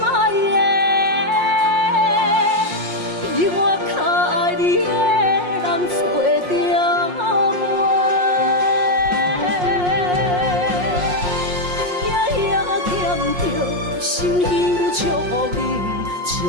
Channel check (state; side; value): late; left; 5.6 ms